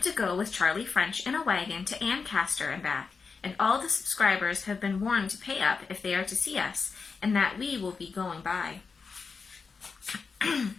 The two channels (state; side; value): quieter; right; 5.0 dB